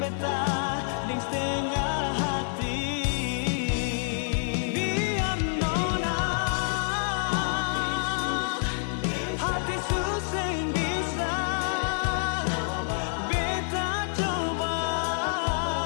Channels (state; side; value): silent; right; 60 dB below the other